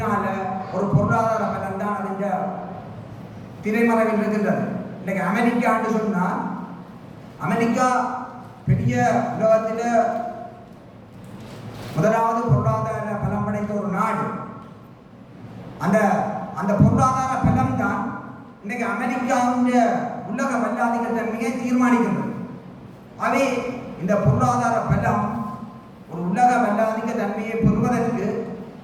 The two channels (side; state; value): both; identical; correlation 1.00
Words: ஒரு பொருளாதார பலம் தான் அதுங்க திரைமறைவில் இருக்கின்றது. இன்னைக்கு அமெரிக்கான்னு சொன்னால் அமெரிக்கா பெரிய உலகத்தில் முதலாவது பொருளாதார பலம் படைத்த ஒரு நாடு. அந்த அந்த பொருளாதார பலம் தான் இன்னைக்கு அமெரிக்காவுடைய உலக வல்லாதிக்க தன்மையை தீர்மானிக்கின்றது. அவை இந்த பொருளாதார பலம் ஒரு உலக வல்லாதிக்க தன்மையை பெறுவதற்கு